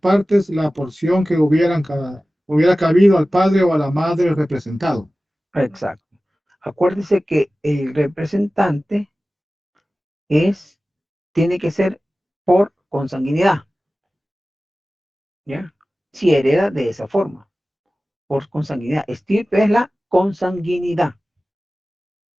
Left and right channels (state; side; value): normal; both; correlation 0.96